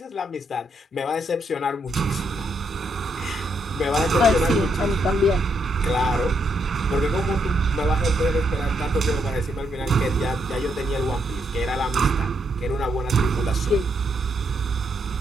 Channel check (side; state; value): both; normal; correlation 0.77